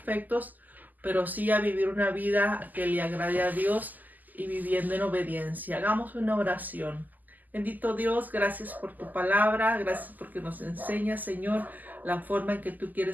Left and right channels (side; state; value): left; late; 0.083 ms